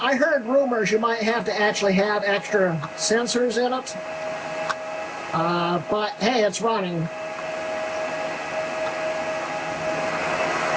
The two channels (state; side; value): identical; both; correlation 1.00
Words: heard rumors you might have to actually have extra sensors in it. But hey, it's running.